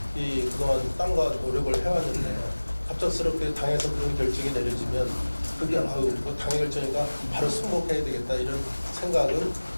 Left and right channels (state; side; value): inverted; both; correlation -1.00